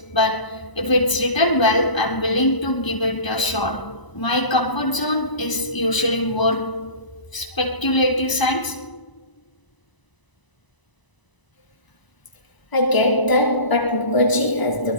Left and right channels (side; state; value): right; late; 1.0 ms